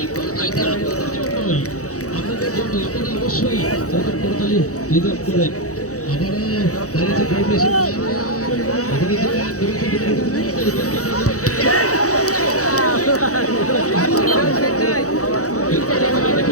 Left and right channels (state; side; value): late; right; 0.65 ms